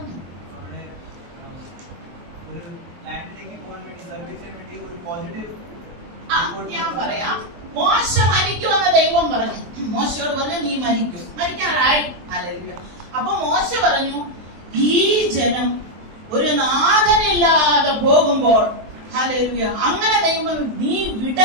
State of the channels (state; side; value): late; left; 23 ms